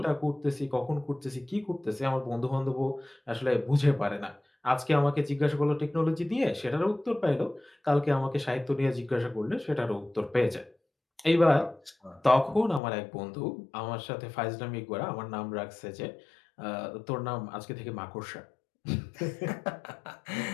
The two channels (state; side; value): drops out; right; at 12.8 s